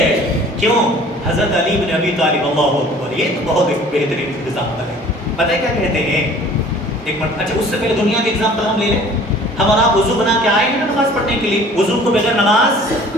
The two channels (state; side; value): normal; both; correlation 0.49